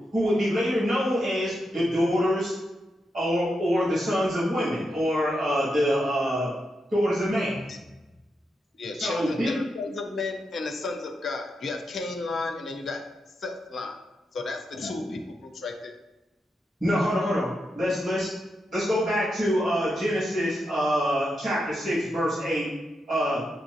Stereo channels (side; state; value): both; normal; correlation 0.85